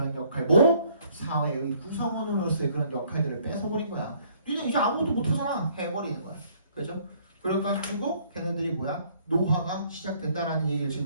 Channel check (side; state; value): both; inverted; correlation -0.62